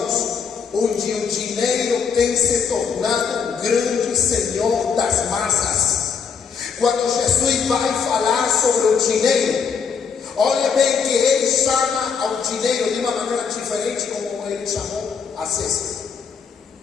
onde o dinheiro tem se tornado um grande senhor das massas. Quando Jesus vai falar sobre o dinheiro, olha bem que ele chama ao dinheiro de uma maneira diferente como ele chamou a César.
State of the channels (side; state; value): right; quieter; 6.2 dB